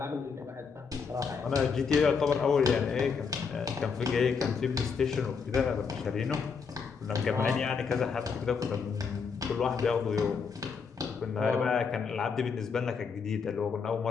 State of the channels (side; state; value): right; quieter; 5.6 dB